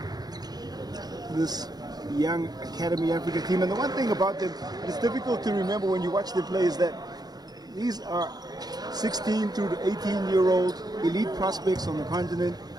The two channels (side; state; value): left; late; 0.19 ms